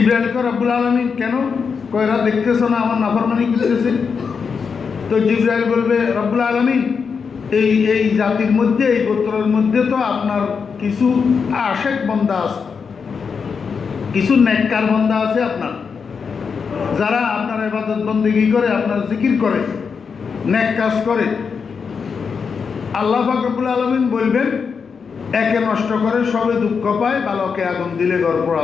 রব্বুল আলামিন কেন কয়রা দেখতেছ না আমার নাফরমানি করতেছে? তো জিবরাইল বলবে, রব্বুল আলামিন এই জাতির মধ্যে, এই গোত্রের মধ্যে তো আপনার কিছু আশেক বান্দা আছে, কিছু নেককার বান্দা আছে আপনার, যারা আপনার ইবাদত বন্দেগী করে, আপনার জিকির করে, নেক কাজ করে। আল্লাহ পাক রব্বুল আলামিন বলবেন, একে নষ্ট করে সবে দুঃখ পায়, বালকে আগুন দিলে ঘর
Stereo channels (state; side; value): quieter; right; 5.8 dB